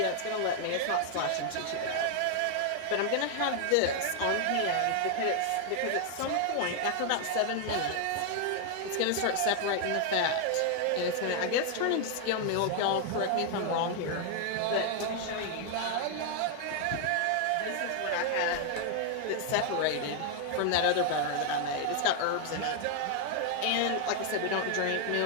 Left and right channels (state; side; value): different; both; correlation 0.00